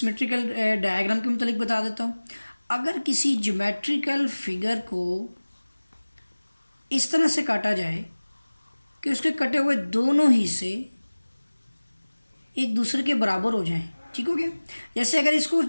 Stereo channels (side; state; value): both; inverted; correlation -1.00